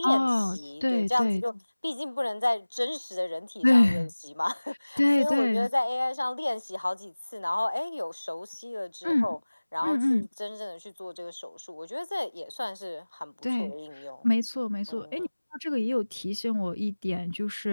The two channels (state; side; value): inverted; both; correlation -1.00